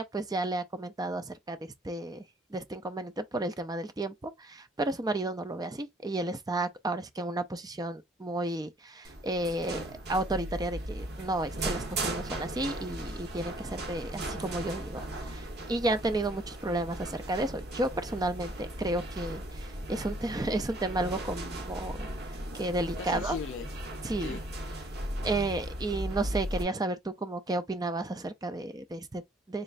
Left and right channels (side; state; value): both; normal; correlation 0.61